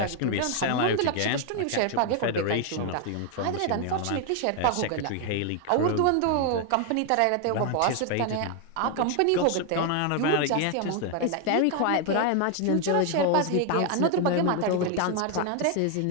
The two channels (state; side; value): different; both; correlation 0.01